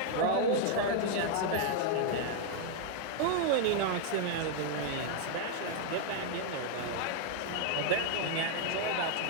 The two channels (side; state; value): both; different; correlation 0.00